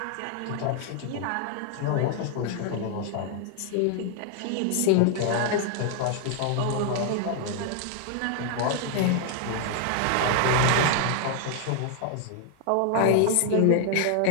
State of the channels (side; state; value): both; different; correlation 0.00